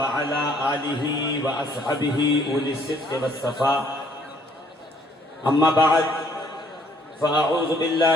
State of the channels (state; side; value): normal; both; correlation 0.63